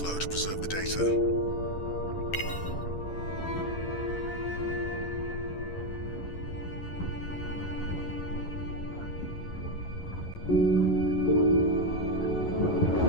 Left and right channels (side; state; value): right; late; 11 ms